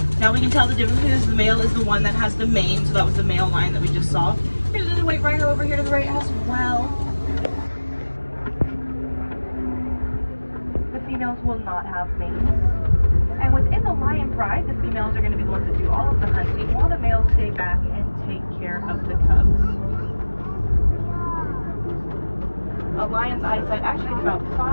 Now we can tell the difference because the male is the one that has the mane, so that was the male lion that we just saw. Here's another white rhino over here to the right as well. females will not have mates. And within the lion pride, the females are going to be the ones that do all of the hunting, while the males stay back and take care of the cubs. A lion's eyesight actually gets about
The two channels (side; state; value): both; inverted; correlation -1.00